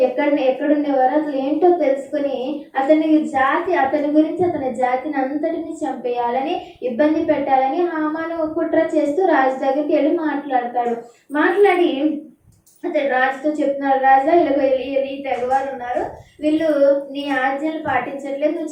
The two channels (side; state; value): both; identical; correlation 1.00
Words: ఎక్కడుండేవారు, అసలు ఏంటో తెలుసుకుని అతని గురించి అతని జాతిని అంతటిని చంపేయాలని, ఇబ్బంది పెట్టాలని హామాను కుట్ర చేస్తూ రాజు దగ్గరికి వెళ్ళి మాట్లాడి అతడు రాజుతో చెప్తున్నాడు, రాజా ఇలా ఈ తెగవారు ఉన్నారు, వీళ్ళు నీ ఆజ్ఞలు పాటించట్లేదు,